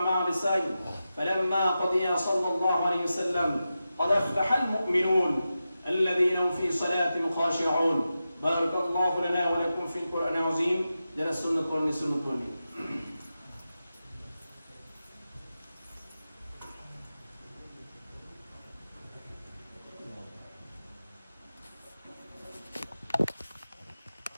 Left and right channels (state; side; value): inverted; both; correlation -0.92